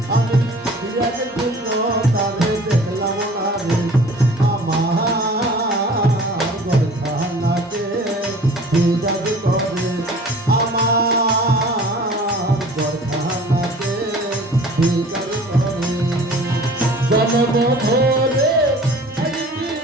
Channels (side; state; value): both; normal; correlation 0.46